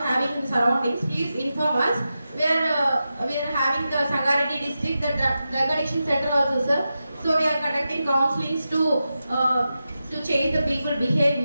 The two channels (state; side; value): inverted; both; correlation -0.91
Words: having in surroundings, please inform us. We are having the Sangareddy district, the drug addiction center also, sir. So we are conducting counselings to change the people